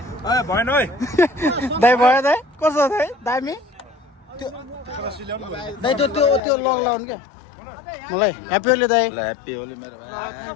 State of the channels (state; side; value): drops out; right; at 6.4 s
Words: भएन है दाइ भयो दाइ कसो दाइ दामी दाइ त्यो लगाउनु क्या मलाई ह्याप्पी होली दाइ ह्याप्पी होली मेरो भाइ